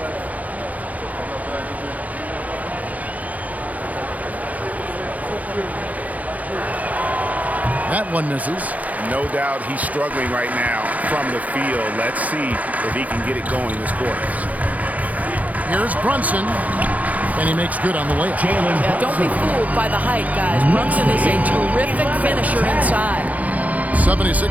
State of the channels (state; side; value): late; left; 0.075 ms